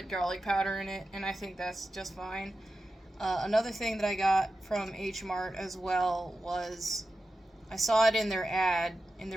garlic powder in it, and I think that's just fine. Another thing that I got from H Mart as well was, I saw it in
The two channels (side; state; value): both; normal; correlation 0.92